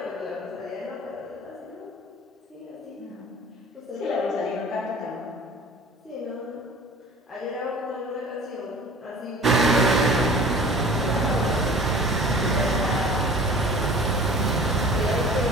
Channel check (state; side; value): normal; both; correlation 0.44